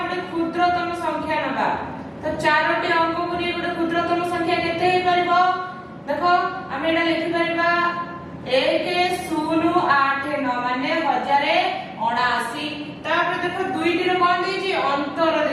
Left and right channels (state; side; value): identical; both; correlation 1.00